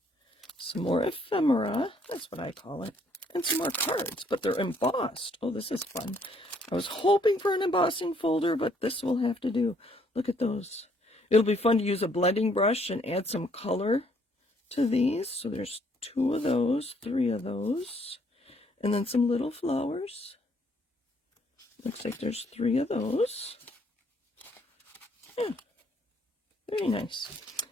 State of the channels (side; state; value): both; normal; correlation 0.66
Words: some more ephemera, that's what I call it, and some more cards, but they're embossed. Oh, this is fun. I was hoping for an embossing folder, but this will have to do. Look at those. It'll be fun to use a blending brush and add some color to these. So there's 2 of those, 3 of those, and then some little flowers. Looks like there's 3 of those. Yeah, very nice.